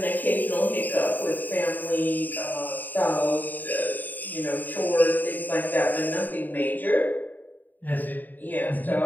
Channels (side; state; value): right; late; 0.086 ms